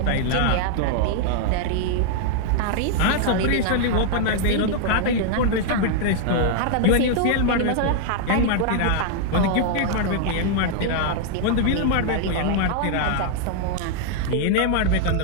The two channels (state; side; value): different; both; correlation -0.01